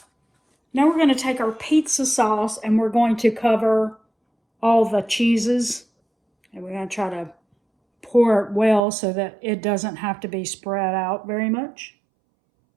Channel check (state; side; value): drops out; left; at 8.8 s